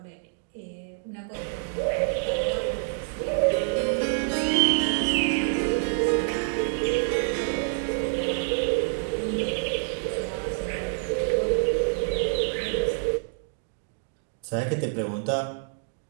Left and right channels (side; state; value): left; silent; digital silence